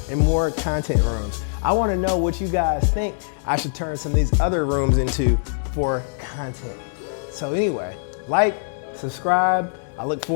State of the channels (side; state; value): right; silent; 64 dB below the other